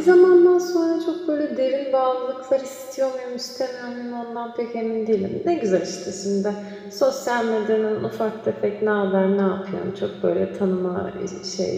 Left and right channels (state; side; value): identical; both; correlation 1.00